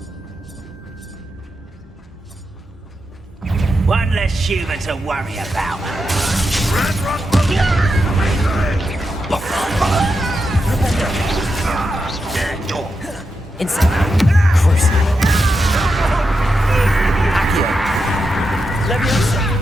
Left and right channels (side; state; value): both; normal; correlation 0.87